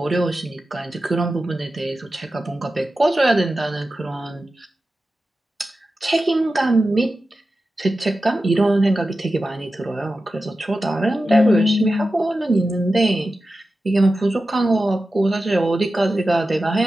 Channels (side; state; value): both; normal; correlation 0.93